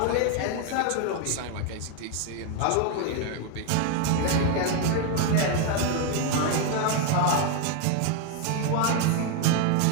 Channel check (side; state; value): both; different; correlation 0.01